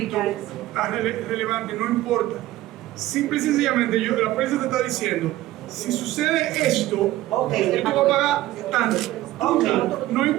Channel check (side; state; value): left; quieter; 15.8 dB